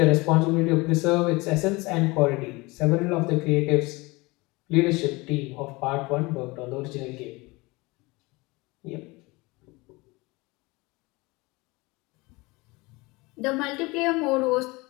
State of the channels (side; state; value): right; quieter; 23.9 dB